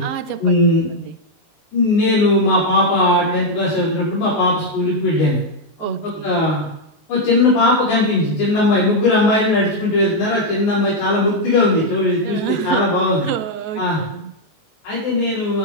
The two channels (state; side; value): late; right; 19 ms